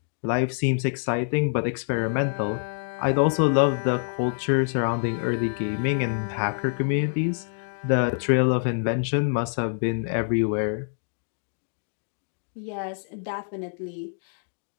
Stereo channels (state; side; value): silent; right; digital silence